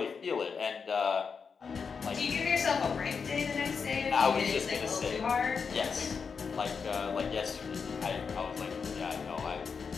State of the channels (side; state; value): right; quieter; 5.7 dB